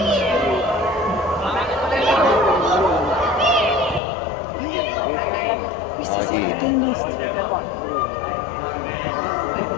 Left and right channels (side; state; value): right; drops out; at 4.0 s